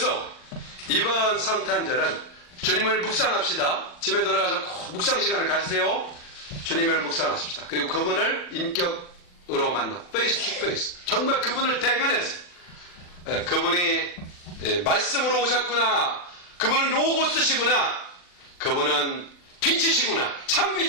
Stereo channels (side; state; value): right; late; 40 ms